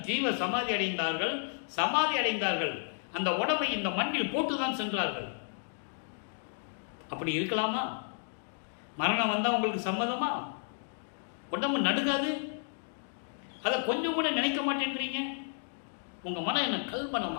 ஜீவ சமாதி அடைந்தார்கள், சமாதி அடைந்தார்கள். அந்த உடம்பை இந்த மண்ணில் போட்டுதான் சென்றார்கள். அப்படி இருக்கலாமா? மரணம் வந்தால் உங்களுக்கு சம்மதமா? உடம்பு நடுக்காது? அதை கொஞ்சம் கூட நினைக்க மாட்டேன்றீங்க. உங்கள் மனம் என்ன கல்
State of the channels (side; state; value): right; silent; 56 dB below the other